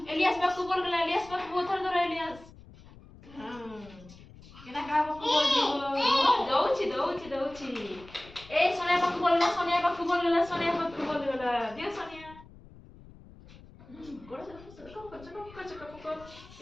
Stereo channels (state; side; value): noise; left; rumble, 20 dB below the sound